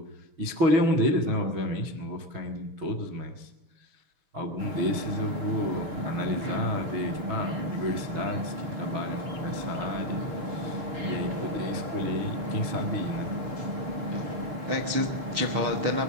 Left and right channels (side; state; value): left; late; 6.6 ms